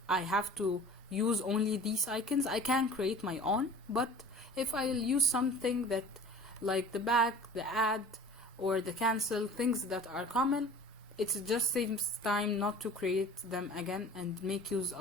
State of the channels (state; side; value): normal; both; correlation 0.42